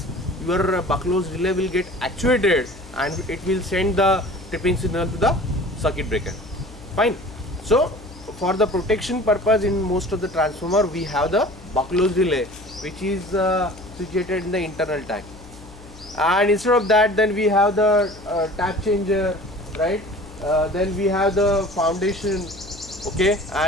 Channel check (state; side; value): noise; left; hum, 19 dB below the sound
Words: your bucklose relay will get actuated and it will send the tripping signal to the circuit breaker. Fine. So for the protection purpose, in most of the transformer we have the bucklose relay, which is situated in the internal tag. And instead of that, then we have the tap changer, right? Then we have the foundation, okay,